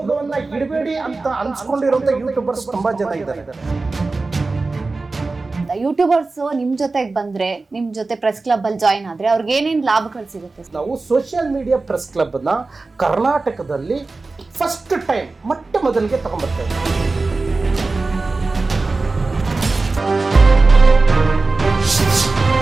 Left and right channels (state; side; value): quieter; left; 3.6 dB